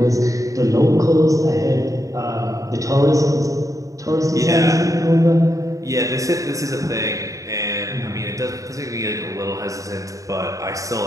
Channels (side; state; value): left; late; 0.16 ms